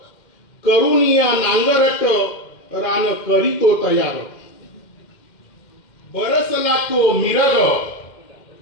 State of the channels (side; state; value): right; late; 2.1 ms